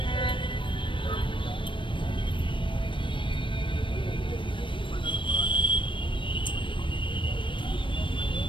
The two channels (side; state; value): right; late; 0.24 ms